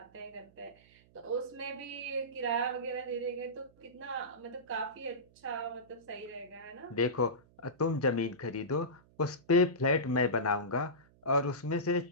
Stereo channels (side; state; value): right; noise; hum, 28 dB below the sound